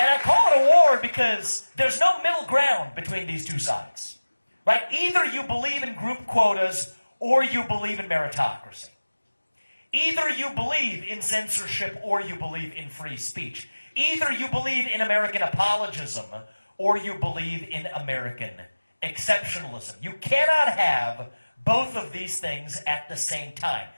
I call it a war because there's no middle ground between these two sides. Right? Either you believe in group quotas or you believe in meritocracy. Either you believe in censorship or you believe in free speech. Either you believe in American apologism or you believe in American exceptionalism. You cannot have both of these things at the same time.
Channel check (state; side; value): inverted; both; correlation -1.00